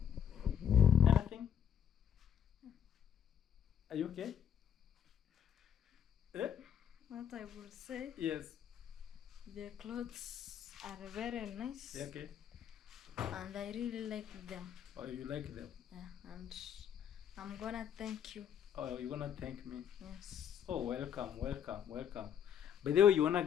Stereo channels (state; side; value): quieter; right; 9.0 dB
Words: Anything? Are you okay? Eh? What I will say, Yes. the clothes are very nice. Yeah, okay. And I really like them. Oh, you like them? Yeah, and I'm gonna thank you. Oh, you're gonna thank me? Yes. Oh, welcome. By the way, you wanna